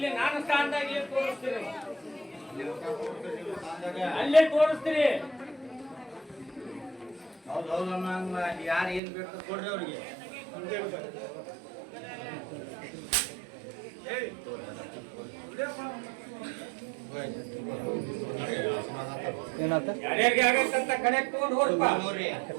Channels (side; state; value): left; drops out; at 9.0 s